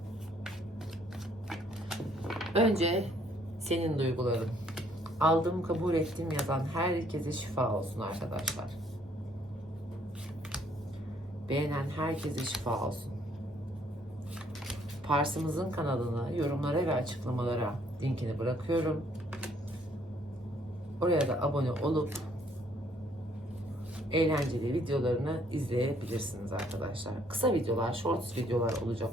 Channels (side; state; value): both; normal; correlation 0.65